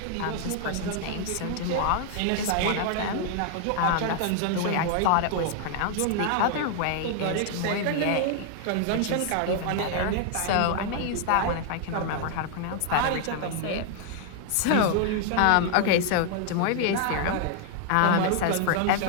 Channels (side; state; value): both; different; correlation 0.00